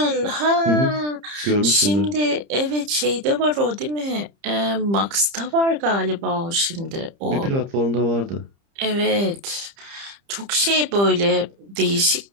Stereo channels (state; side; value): late; left; 30 ms